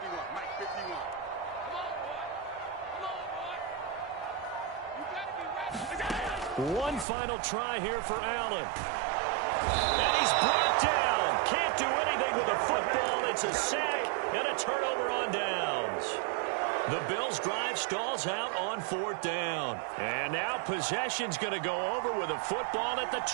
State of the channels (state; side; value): drops out; left; at 7.1 s